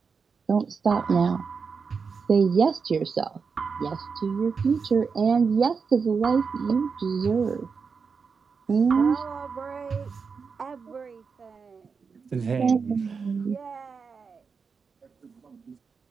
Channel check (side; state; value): left; quieter; 5.4 dB